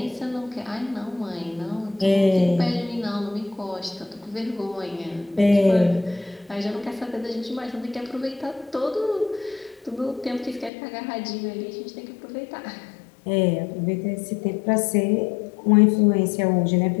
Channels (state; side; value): drops out; right; at 10.7 s